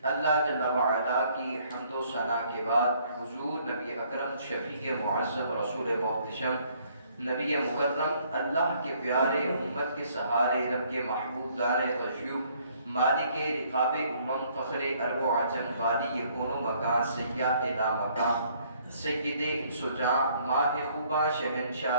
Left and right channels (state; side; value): inverted; both; correlation -0.64